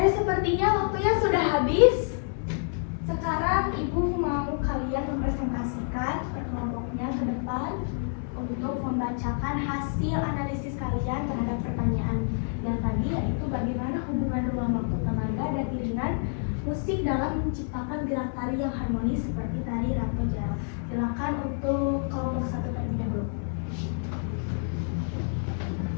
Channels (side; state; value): right; silent; 59 dB below the other